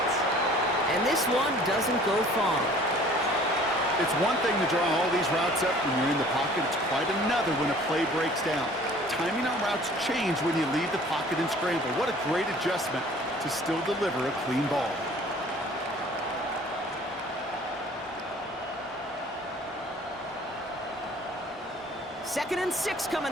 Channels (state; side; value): normal; both; correlation 0.51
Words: And this one doesn't go far. It's one thing to draw all these routes up when you're in the pocket. It's quite another when a play breaks down. Timing on routes change when you leave the pocket and scramble. What a great adjustment to still deliver a clean ball. Second and 6